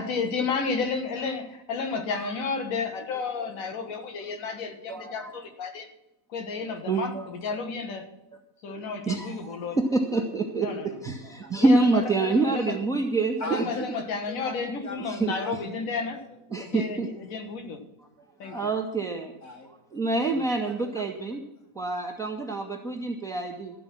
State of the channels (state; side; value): late; right; 4.0 ms